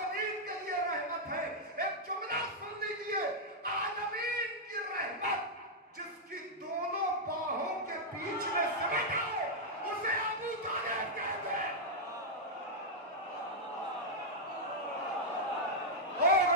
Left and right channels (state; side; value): normal; both; correlation -0.05